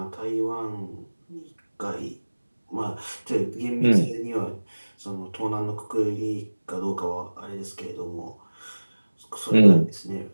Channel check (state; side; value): inverted; both; correlation -1.00